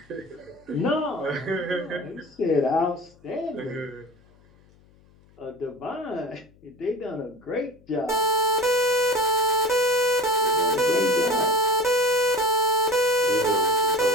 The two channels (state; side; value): noise; left; hum, 29 dB below the sound